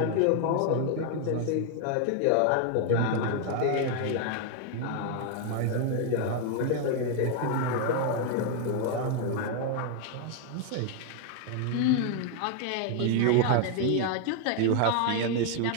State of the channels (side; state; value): both; different; correlation 0.00